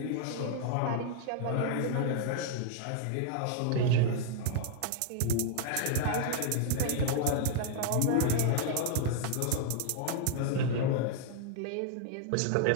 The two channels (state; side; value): different; both; correlation -0.01